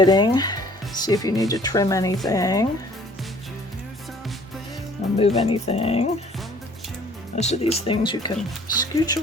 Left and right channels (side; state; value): both; normal; correlation 0.55